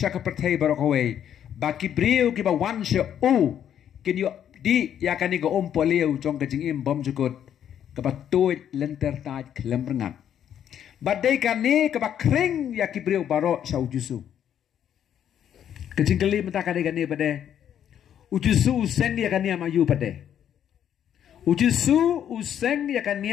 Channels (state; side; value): quieter; right; 9.7 dB